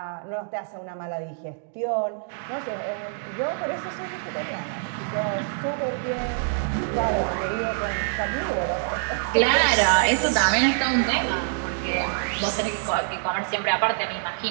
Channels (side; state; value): left; silent; digital silence